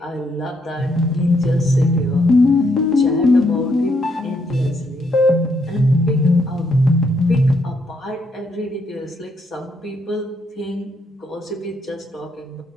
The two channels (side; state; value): both; normal; correlation 0.75